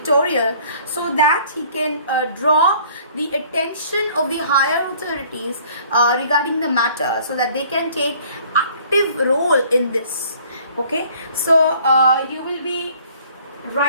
so that he can draw the attention of the higher authorities regarding the matter, so that they can take active role in this. Okay, so you will be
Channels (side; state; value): both; inverted; correlation -0.55